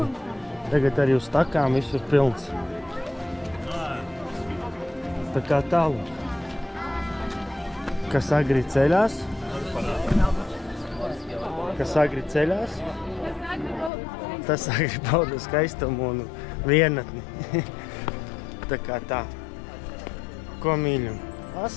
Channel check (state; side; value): drops out; right; at 13.9 s